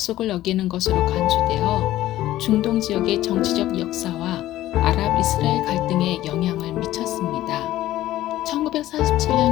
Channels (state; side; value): quieter; right; 14.6 dB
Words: 어기는 것으로 간주되어 중동 지역의 정치적 역사와 아랍 이스라엘 갈등에 영향을 미쳤습니다. 1947년